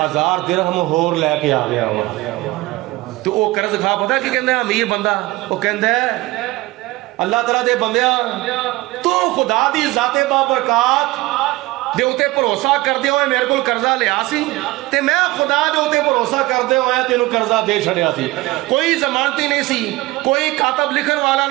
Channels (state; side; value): quieter; left; 20.0 dB